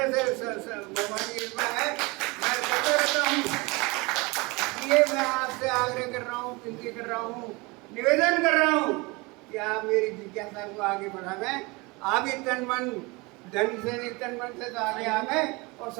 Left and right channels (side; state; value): left; quieter; 25.5 dB